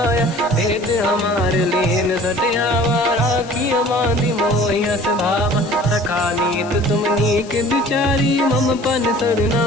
भेद हमार लेन सटियावा, राखी हमारी मोहियस भावा। सखा नीत तुम नीक बिचारी, मम पन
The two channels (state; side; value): noise; left; hiss, 21 dB below the sound